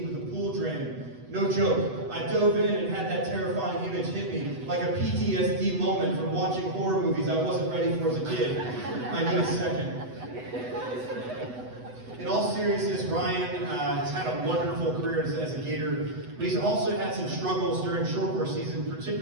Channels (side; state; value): left; late; 8.0 ms